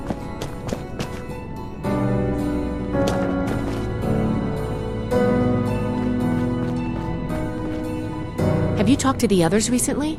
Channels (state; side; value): identical; both; correlation 1.00